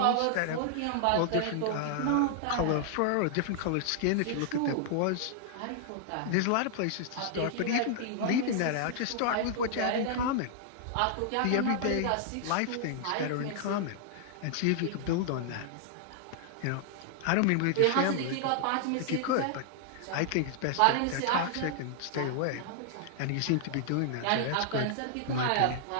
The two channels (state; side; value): different; both; correlation 0.00